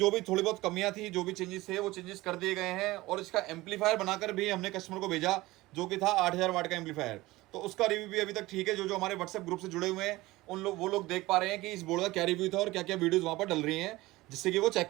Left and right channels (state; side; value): quieter; left; 19.2 dB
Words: भी थोड़ी बहुत कमियां थी, जो भी चेंजेस थे वो चेंजेस कर दिए गए हैं और इसका एम्पलीफायर बनाकर भी हमने कस्टमर को भेजा जो कि था 8000 वाट का एम्पलीफायर। तो उसका रिव्यू भी अभी तक ठीक है। जो जो हमारे व्हाट्सएप ग्रुप से जुड़े हुए हैं उन लोग वो लोग देख पा रहे हैं कि इस बोर्ड का क्या रिव्यू था और क्या क्या वीडियोज वहां पर डल रही हैं, जिससे कि वो चेक